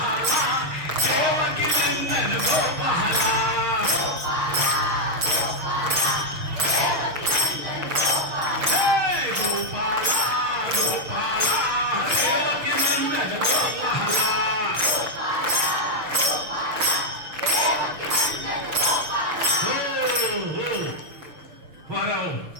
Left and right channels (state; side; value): late; left; 6.5 ms